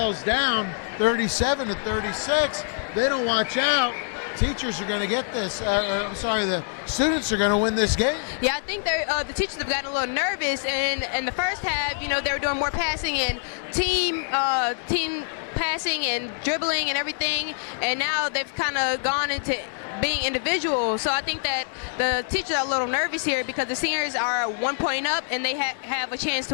down 37-36. They don't watch out. Teachers are going to get this. The students are going to win this game. Yeah, I think the teachers have gotten a little nervous in the first half. They were doing more passing and team passing and dribbling and everything, and now they've kind of gone into being individual. So I think that the teachers are a little nervous here because the seniors are 1 point up and they have a chance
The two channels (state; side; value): silent; right; digital silence